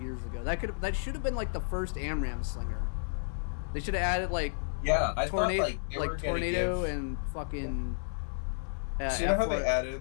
ago. That should have been like the first AMRAAM slinger. They should have added like I tornado, thought like tornado and fucking. So you know how they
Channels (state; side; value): silent; right; digital silence